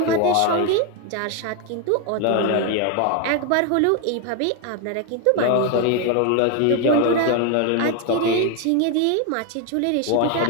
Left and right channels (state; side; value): different; both; correlation 0.01